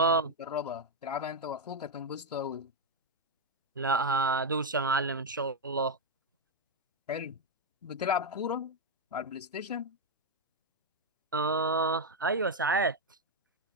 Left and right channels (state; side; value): normal; both; correlation 0.02